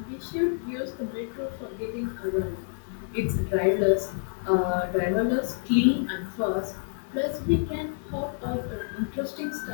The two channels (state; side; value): silent; right; 59 dB below the other